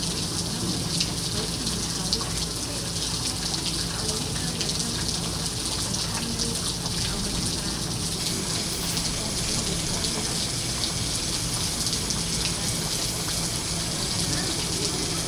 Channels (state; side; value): identical; both; correlation 1.00